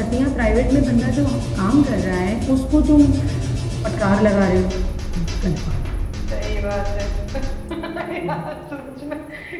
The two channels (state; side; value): identical; both; correlation 1.00